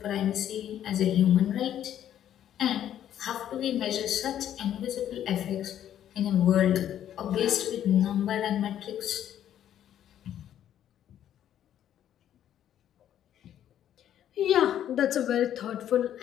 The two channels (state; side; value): quieter; right; 10.8 dB